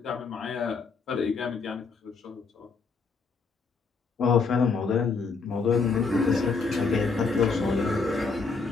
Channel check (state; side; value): quieter; right; 4.7 dB